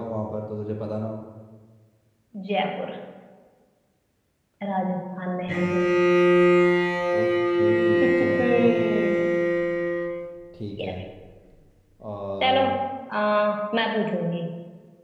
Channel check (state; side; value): identical; both; correlation 1.00